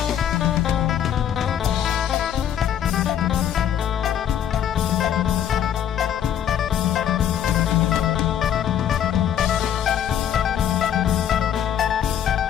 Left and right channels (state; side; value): quieter; right; 9.8 dB